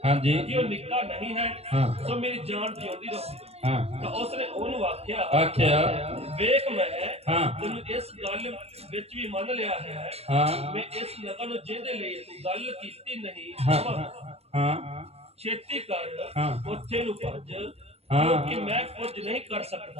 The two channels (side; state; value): left; late; 0.30 ms